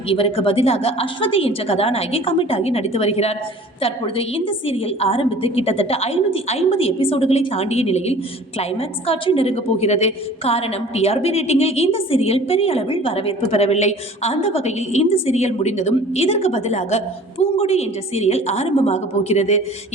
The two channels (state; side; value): normal; both; correlation 0.46